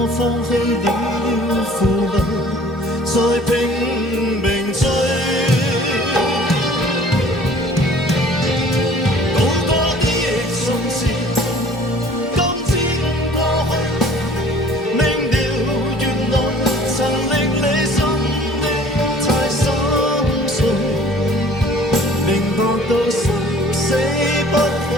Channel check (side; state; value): both; normal; correlation 0.51